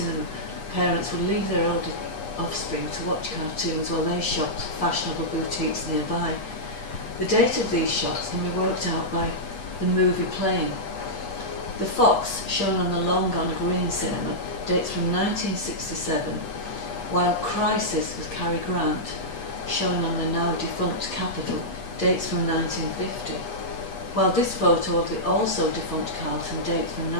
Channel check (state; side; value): late; right; 8.2 ms